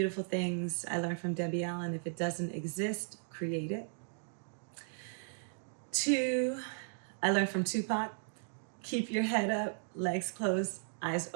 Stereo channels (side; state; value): left; silent; digital silence